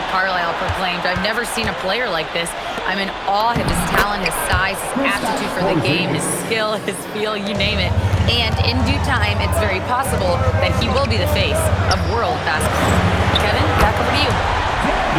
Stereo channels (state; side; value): identical; both; correlation 1.00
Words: Carlisle proclaimed, "I've never seen a player like this. I'm in awe of his talent, his size, his aptitude for the game, his skill, his feel, you name it. And in due time, it's very possible that he will be the face of world basketball." Kevin, back over to you.